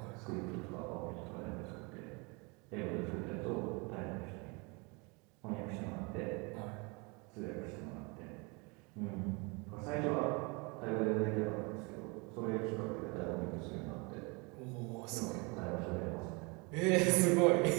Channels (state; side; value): quieter; left; 29.6 dB